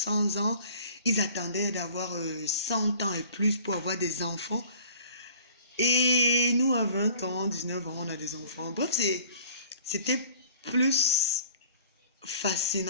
ans. Ils attendaient d'avoir 100 ans et plus pour avoir des enfants. Et nous, à 20 ans, 19 ans, on a des enfants. Bref, c'était plus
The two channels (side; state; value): both; inverted; correlation -0.48